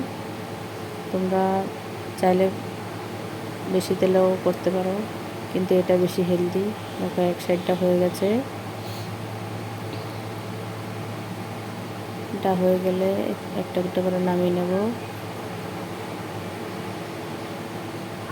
তোমরা চাইলে বেশি তেলেও করতে পারো, কিন্তু এটা বেশি হেলদি। দেখো এক সাইডটা হয়ে গেছে। এটা হয়ে গেলে একটা একটা করে নামিয়ে নেব।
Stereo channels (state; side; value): identical; both; correlation 1.00